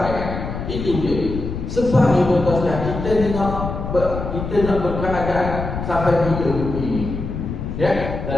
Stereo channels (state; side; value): noise; left; rumble, 6 dB below the sound